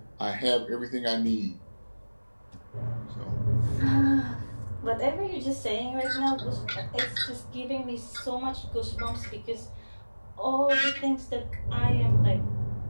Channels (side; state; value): both; inverted; correlation -1.00